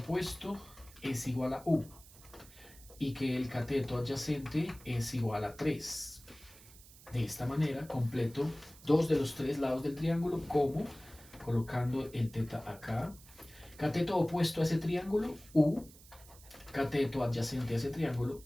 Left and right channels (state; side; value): noise; right; hiss, 21 dB below the sound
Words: es igual a U y que el cateto adyacente es igual a 3. De esta manera completo dos de los tres lados del triángulo, como colocando el teta acá. Cateto opuesto a ese triángulo, U. Cateto adyacente a ese triángulo,